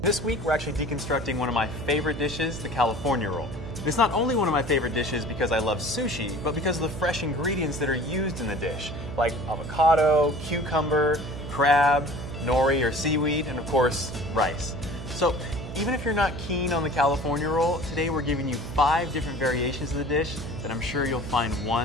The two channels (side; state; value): right; noise; hum, 9 dB below the sound